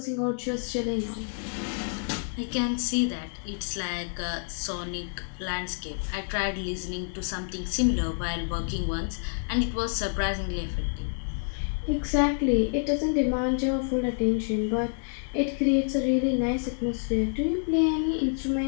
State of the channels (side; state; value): right; silent; digital silence